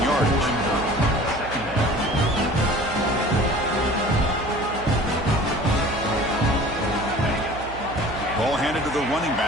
yardage. Ball handed to the running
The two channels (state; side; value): noise; right; hum, 14 dB below the sound